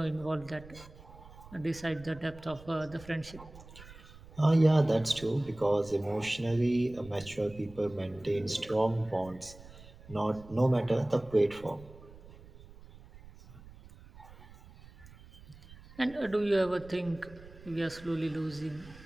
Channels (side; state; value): right; noise; rumble, 19 dB below the sound